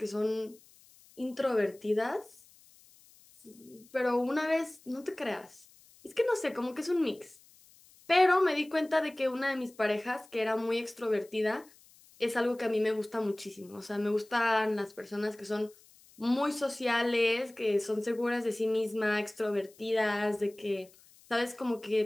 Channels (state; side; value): noise; left; hiss, 27 dB below the sound